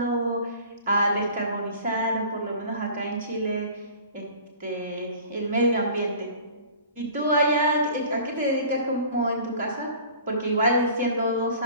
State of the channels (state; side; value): inverted; both; correlation -0.44